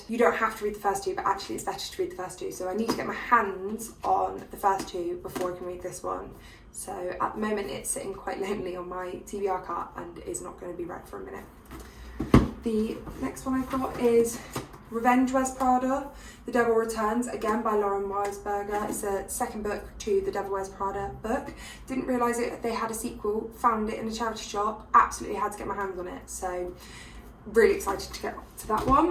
you don't have to read the first two, but actually it's better to read the first two. So I need to get my hands on the first two before I can read this one. So at the moment it's sitting quite lonely on my TBR cart and is not going to be read for a minute. The next one I've got is Revenge Wears Prada, The Devil Returns, again by Lauren Weisberger. It's a second book to the Devil Wears Prada book. Didn't realise they had a sequel, found it in a charity shop, absolutely had to get my hands on it, so really excited to get to that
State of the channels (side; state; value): both; identical; correlation 1.00